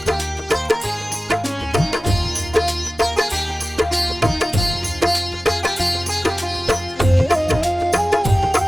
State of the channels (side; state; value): both; normal; correlation 0.96